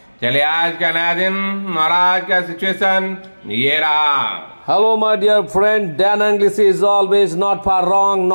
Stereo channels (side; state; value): both; inverted; correlation -1.00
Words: चलिए आज का नया दिन और आज का सिचुएशन ये रहा। Hello, my dear friend. Dan English is always not far wrong,